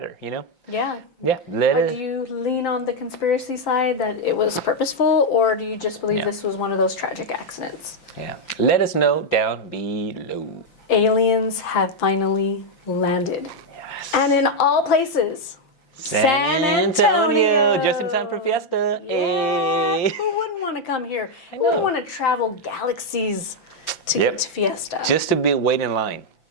you know? Yeah. Yeah. Do you lean on the conspiracy side that it was purposeful, or do you just believe this was one of those tragic accidents? Yeah. Let us know down below. Aliens have finally landed. Yes. And in all places. San Antonio. Just in time for fiesta. Yeah. Hey. Who wouldn't want to come here? I Who wouldn't know. want to travel galaxies to get to fiesta? Just to be wait in line.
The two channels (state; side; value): late; right; 5.9 ms